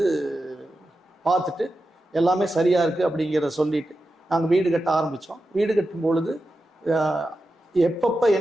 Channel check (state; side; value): normal; both; correlation 0.90